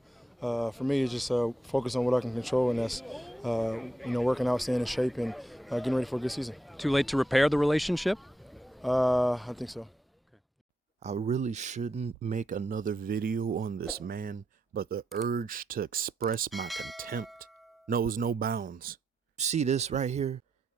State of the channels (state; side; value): normal; both; correlation 0.81